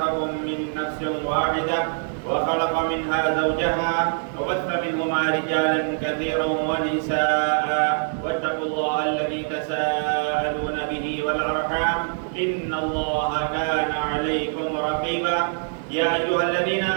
من نفس واحدة وخلق منها زوجها وبث منهما رجالا كثيرا ونساء واتقوا الله الذي تساءلون به والأرحام إن الله كان عليكم رقيبا. يا أيها الذين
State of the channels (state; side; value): silent; left; digital silence